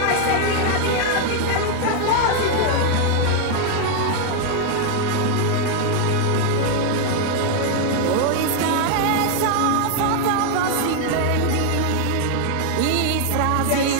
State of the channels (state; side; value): different; both; correlation 0.00